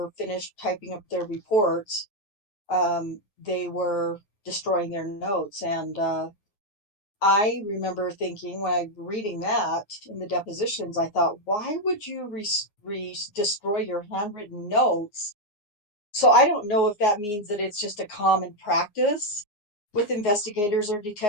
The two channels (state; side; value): late; right; 9.6 ms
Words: finished typing up their reports, they were destroying their notes. And I remember thinking when I reading that in the depositions, I thought, why would you destroy your handwritten notes? So I don't know if that means that it's just a common practice with investigators or